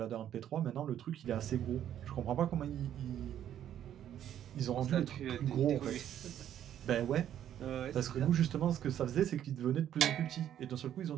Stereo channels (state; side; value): quieter; left; 10.6 dB